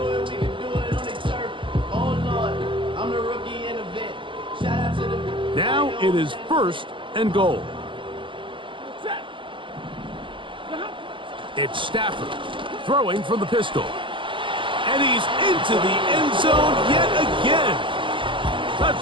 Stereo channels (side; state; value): left; late; 0.24 ms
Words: Now it is first and goal. It's Stafford throwing from the pistol. And he's into the end zone yet again.